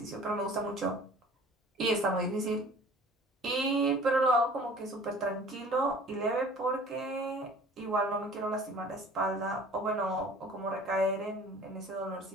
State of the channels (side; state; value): both; normal; correlation 0.47